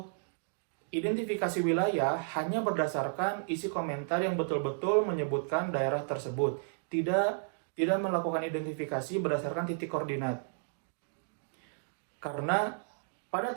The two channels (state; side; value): silent; left; digital silence